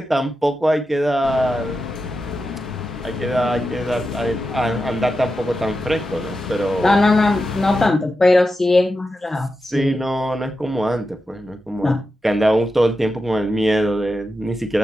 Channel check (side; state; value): both; normal; correlation 0.89